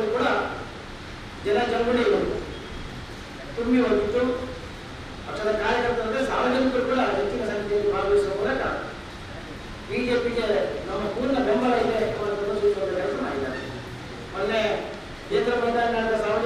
ಕೂಡ ಜನಜಂಗುಳಿ ತುಂಬಿ ಹೋಗಿತ್ತು. ಪಕ್ಷದ ಕಾರ್ಯಕರ್ತರಂದ್ರೆ ಸಾರ್ವಜನಿಕರು ಕೂಡ ಹೆಚ್ಚಿನ ಸಂಖ್ಯೆಯಲ್ಲಿ ಭಾಗವಹಿಸುವ ಮೂಲಕ ಬಿಜೆಪಿಗೆ ನಮ್ಮ ಪೂರ್ಣ ಬೆಂಬಲ ಇದೆ ಪ್ರದರ್ಶಿಸುವ ಕೆಲಸ ಮಾಡಿದ್ದಾರೆ. ಮೊನ್ನೆ ಕೇಂದ್ರ ಮೈದಾನ ನಡೆದ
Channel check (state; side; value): identical; both; correlation 1.00